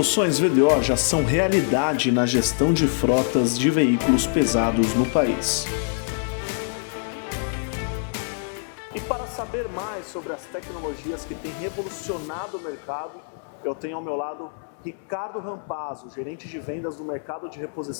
VDO já são realidade na gestão de frotas de veículos pesados no país. E para saber mais sobre as tecnologias que têm revolucionado o mercado, eu tenho ao meu lado Ricardo Rampazzo, gerente de vendas do mercado de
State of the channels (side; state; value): right; silent; 61 dB below the other